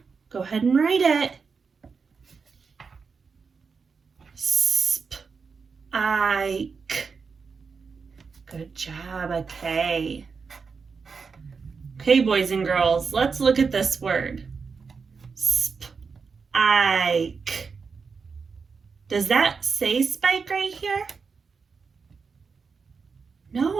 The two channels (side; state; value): left; quieter; 5.2 dB